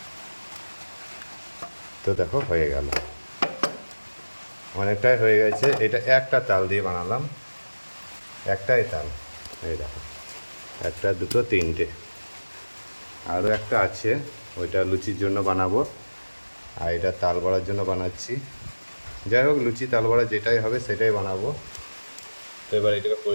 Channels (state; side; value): inverted; both; correlation -1.00